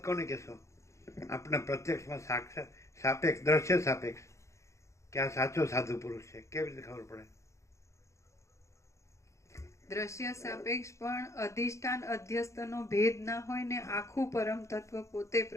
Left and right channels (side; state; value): right; late; 0.14 ms